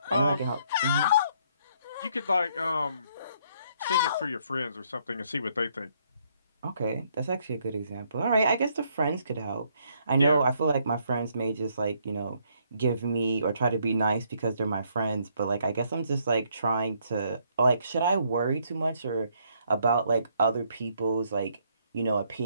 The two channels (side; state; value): both; inverted; correlation -0.70